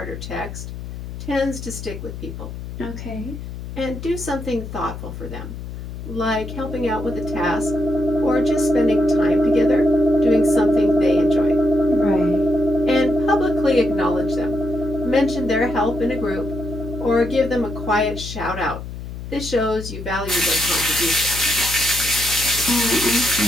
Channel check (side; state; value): left; noise; hum, 9 dB below the sound